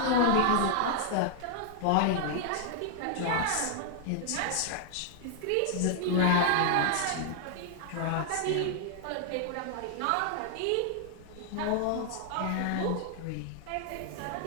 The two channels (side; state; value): both; different; correlation 0.00